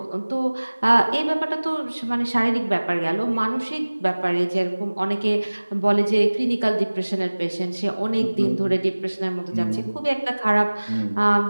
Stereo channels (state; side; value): inverted; both; correlation -1.00